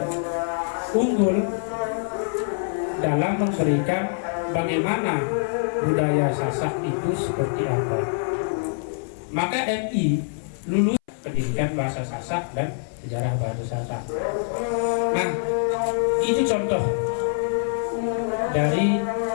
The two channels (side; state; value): right; silent; 59 dB below the other